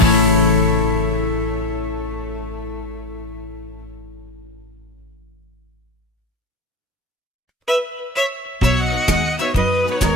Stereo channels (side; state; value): both; normal; correlation 0.31